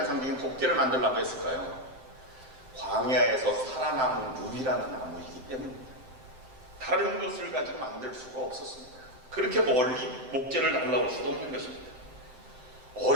상징인 법궤를 만들려고 했을까요? 광야에서 살아남은 유일한 나무이기 때문입니다. 다른 것을 가지고 만들 수가 없었습니다. 그렇게 멀리 목재를 달라올 수도 없는 것입니다.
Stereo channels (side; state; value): left; late; 7.7 ms